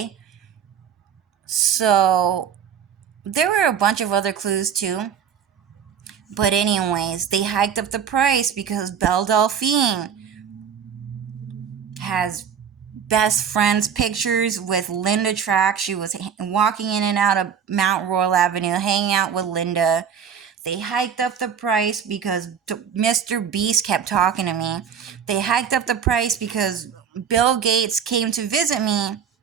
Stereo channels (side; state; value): left; quieter; 7.7 dB